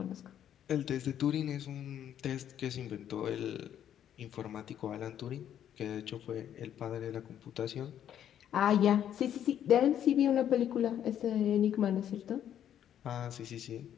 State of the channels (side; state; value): right; quieter; 10.1 dB